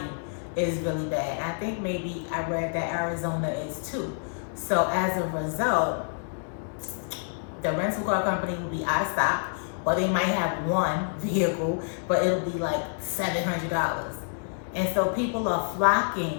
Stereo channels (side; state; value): right; silent; digital silence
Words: is really bad. I think maybe I read that Arizona is too. So as a result, the rental car company will be out of stock, or they might have one vehicle, but it'll be like $700. And so people are